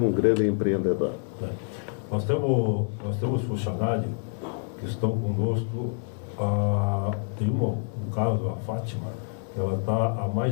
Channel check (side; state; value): right; silent; 60 dB below the other